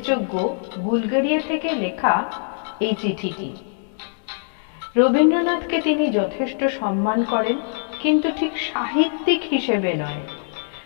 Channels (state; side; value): silent; right; digital silence